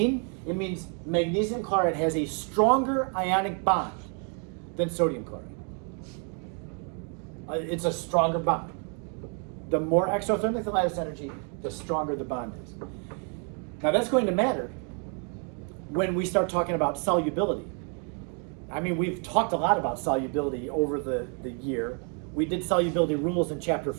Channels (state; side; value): quieter; left; 39.8 dB